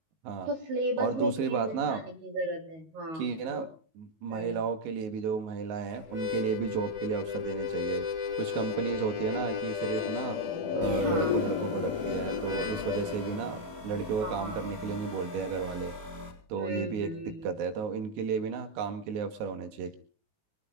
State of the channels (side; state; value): left; late; 19 ms